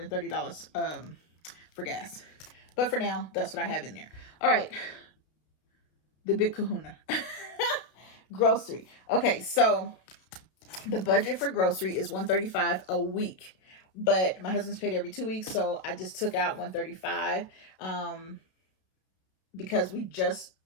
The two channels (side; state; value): right; late; 32 ms